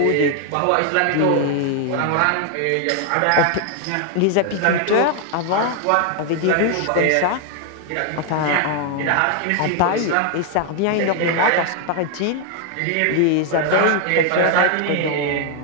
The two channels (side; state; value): both; different; correlation 0.00